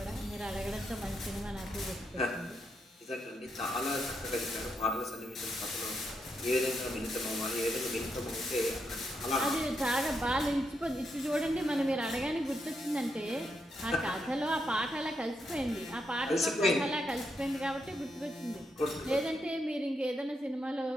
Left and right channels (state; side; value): normal; both; correlation 0.81